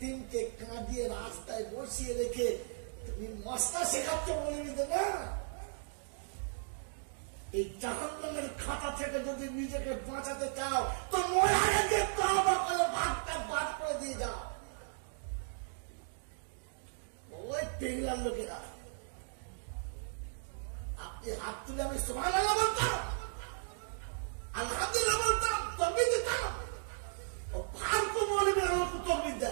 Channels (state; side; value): silent; left; digital silence